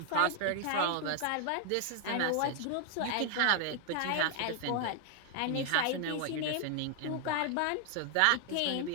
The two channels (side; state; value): both; different; correlation 0.00